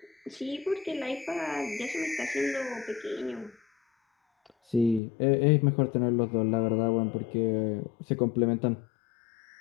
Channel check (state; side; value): drops out; right; at 5.0 s